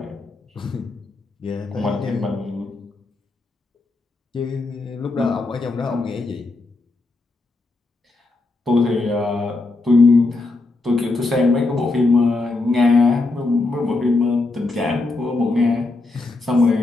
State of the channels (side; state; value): right; quieter; 3.3 dB